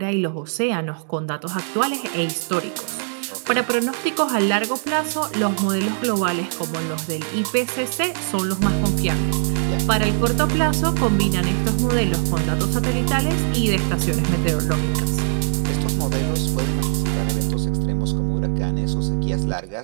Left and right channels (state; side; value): silent; left; digital silence